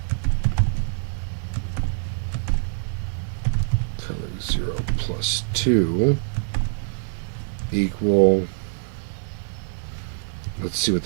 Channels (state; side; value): silent; left; 62 dB below the other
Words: color 0 plus 2 equal, let's see what